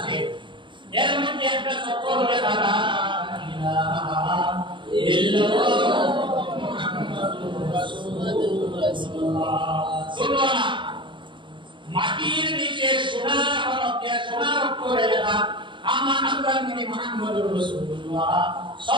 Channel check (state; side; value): late; left; 0.23 ms